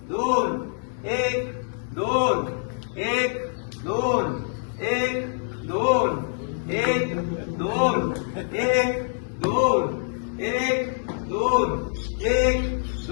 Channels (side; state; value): right; silent; 62 dB below the other